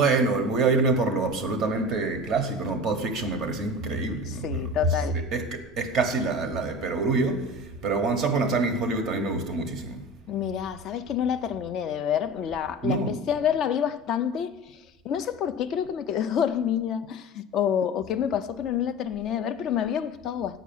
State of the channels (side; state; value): both; normal; correlation 0.34